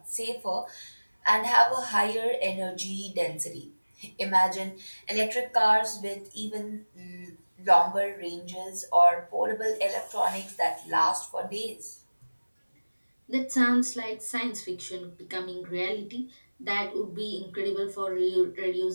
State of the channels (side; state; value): both; inverted; correlation -1.00